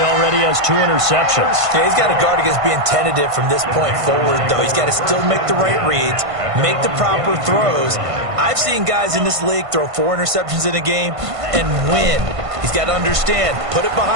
already has 2 interceptions. Yeah, he's got to guard against being tentative from this point forward, though. He's got to still make the right reads, make the proper throws. I've seen guys in this league throw 4 interceptions in a game and win. He's got to understand, put it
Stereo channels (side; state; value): left; late; 1.5 ms